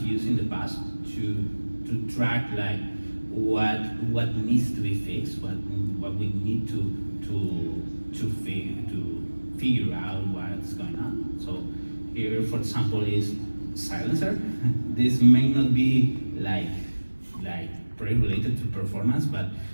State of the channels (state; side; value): inverted; both; correlation -1.00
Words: used in the past to track like what needs to be fixed, what we need to figure out what's going on. So here, for example, is silencer. This may not be like very related to performance, but